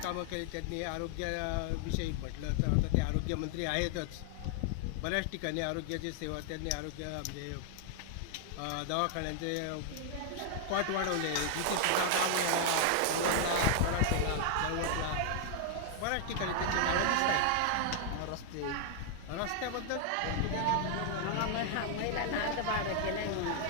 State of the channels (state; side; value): different; both; correlation 0.00